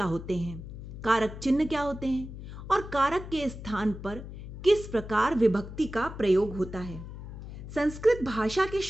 होते हैं, कारक चिन्ह क्या होते हैं और कारक के स्थान पर किस प्रकार विभक्ति का प्रयोग होता है। संस्कृत भाषा के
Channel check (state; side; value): noise; left; hum, 11 dB below the sound